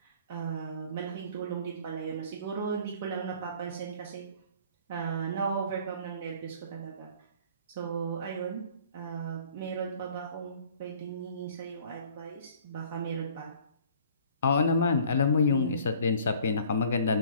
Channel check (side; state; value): both; inverted; correlation -0.52